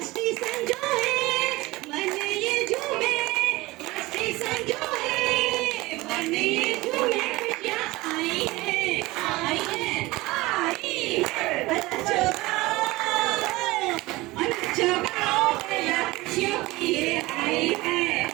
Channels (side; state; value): left; quieter; 20.4 dB